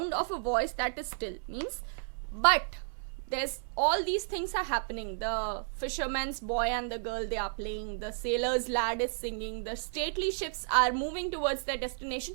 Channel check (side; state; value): left; silent; 56 dB below the other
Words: of a voice that is still. Means, but there's all these things are happening. The fisherman's boy and the girl, they are playing, the sailor's lad is singing, the stately ships are moving towards their destination.